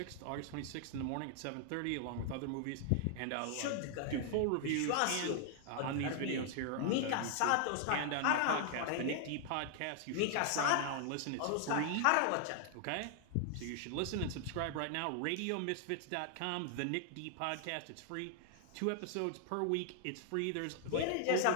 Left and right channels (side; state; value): both; different; correlation 0.00